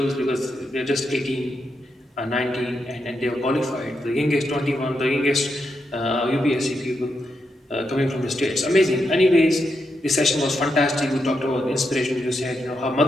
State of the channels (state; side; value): normal; both; correlation 0.83